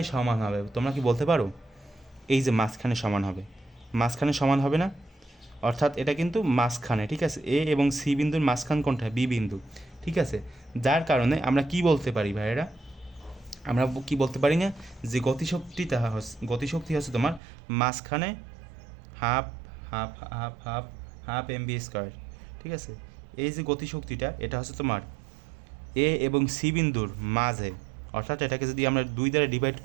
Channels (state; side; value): drops out; left; at 17.4 s